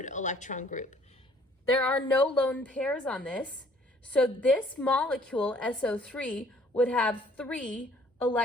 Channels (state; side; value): normal; both; correlation 0.59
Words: electron group. There are no lone pairs on this, so this molecule, SO3, would have 3